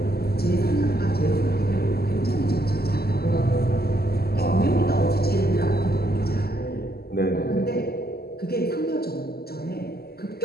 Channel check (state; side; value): late; right; 0.46 ms